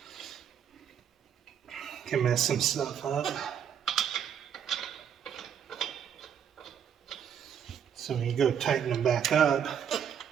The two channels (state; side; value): quieter; left; 8.5 dB